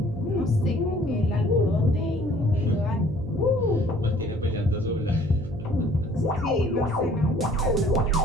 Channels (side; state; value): right; noise; hum, 11 dB below the sound